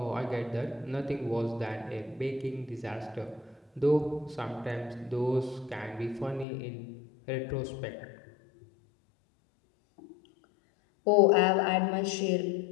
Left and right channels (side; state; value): right; drops out; at 6.5 s